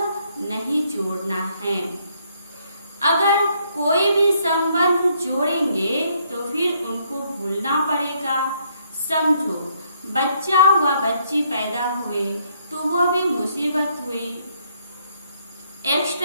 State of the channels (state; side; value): inverted; both; correlation -0.70